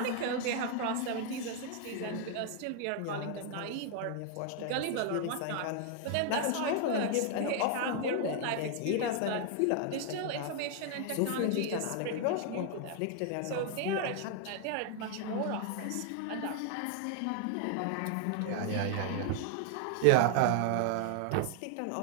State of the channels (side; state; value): both; different; correlation 0.00